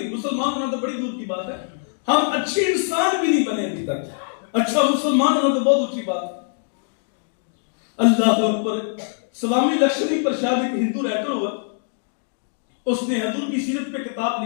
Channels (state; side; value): silent; right; digital silence